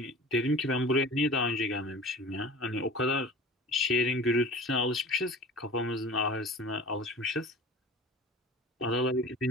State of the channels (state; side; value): normal; both; correlation 0.38